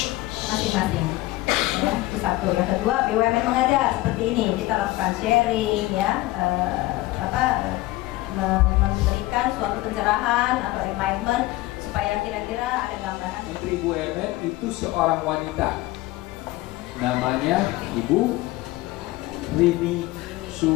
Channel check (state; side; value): quieter; right; 18.5 dB